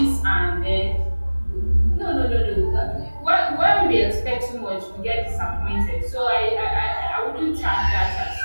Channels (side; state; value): both; inverted; correlation -1.00